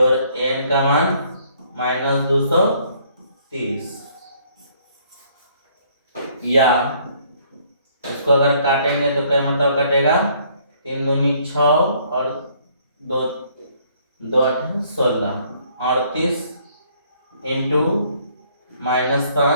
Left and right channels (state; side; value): inverted; both; correlation -0.63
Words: n का मान -230, या इसको अगर काटेंगे तो क्या मतलब कटेगा, 3 दूनी 6 और 2 2 16, 38 इंटू